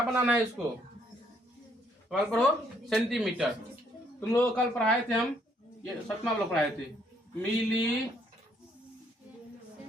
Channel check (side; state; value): both; normal; correlation 0.68